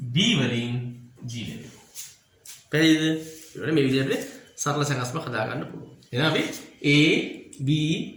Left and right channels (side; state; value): both; identical; correlation 1.00